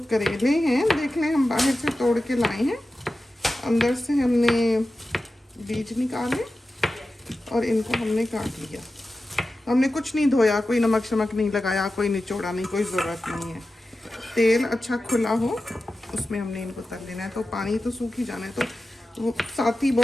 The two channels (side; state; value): both; normal; correlation 0.93